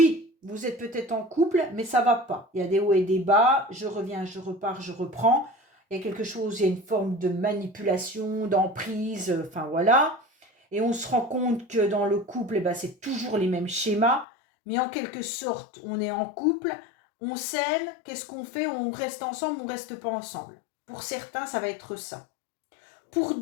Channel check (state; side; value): drops out; right; at 14.2 s